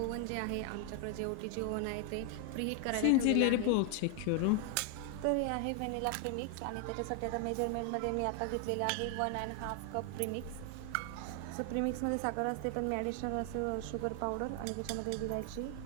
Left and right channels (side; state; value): both; different; correlation 0.00